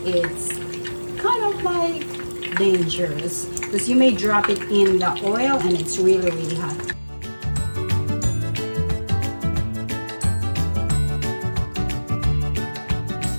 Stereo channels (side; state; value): both; inverted; correlation -1.00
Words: it's kind of like dangerous because you may drop it in the oil and it's really hot.